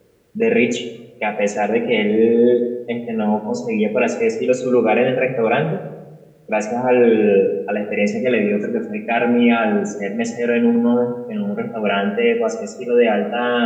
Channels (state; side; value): identical; both; correlation 1.00